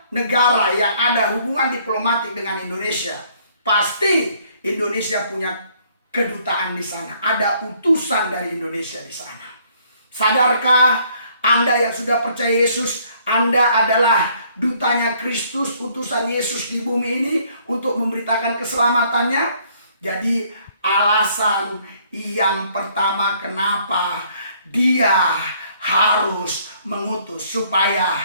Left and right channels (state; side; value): inverted; both; correlation -0.63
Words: negara yang ada hubungan diplomatik dengan Indonesia, pasti Indonesia punya kedutaan di sana. Ada utusan dari Indonesia di sana. Sadarkah Anda yang sudah percaya Yesus, Anda adalah dutanya Kristus, utusan Yesus di bumi ini untuk memberitakan keselamatannya? Jadi alasan yang pertama kenapa dia harus mengutus,